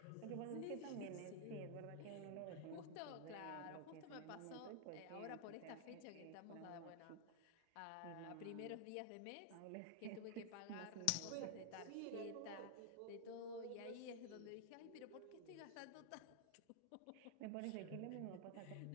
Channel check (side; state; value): both; different; correlation 0.00